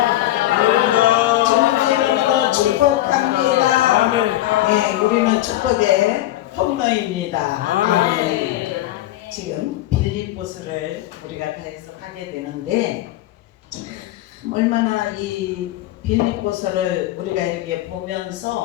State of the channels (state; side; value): quieter; right; 15.1 dB